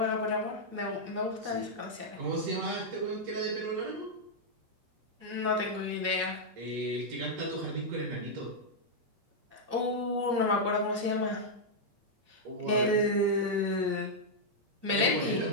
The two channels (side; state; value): left; late; 8.5 ms